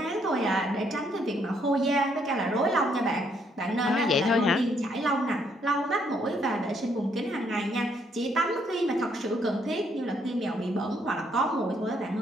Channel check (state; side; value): normal; both; correlation 0.71